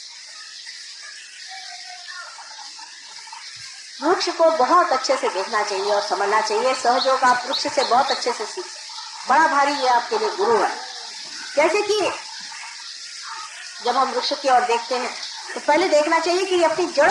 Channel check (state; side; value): identical; both; correlation 1.00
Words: वृक्ष को बहुत अच्छे से देखना चाहिए और समझना चाहिए। सहयोग आप वृक्ष से बहुत अच्छे से सीख, बड़ा भारी ये आपके लिए गुरु है। जैसे कि जब हम वृक्ष की ओर देखते हैं तो पहले देखना चाहिए कि ये अपनी